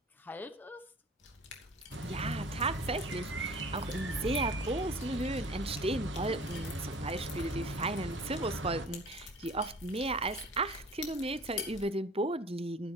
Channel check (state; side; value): normal; both; correlation 0.44